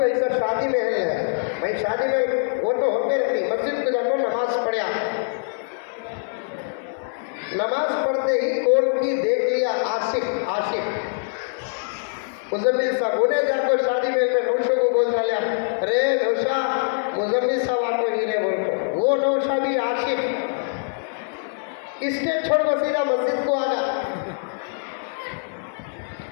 ऐसा शादी महल है। भाई शादी में वो तो होते रहती, मस्जिद को जाकर नमाज पढ़ा। नमाज पढ़ते ही कौन की देख लिया, आशिक मुजम्मिल साहब, उन्हें जाकर शादी में नौशा को बोल डाला, रे नौशा, मुजम्मिल साहब आपको हीरे बोल को। वो नौशा भी आशिक, स्टेज छोड़ कर सीधा मस्जिद को आ गया,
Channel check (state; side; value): silent; right; 63 dB below the other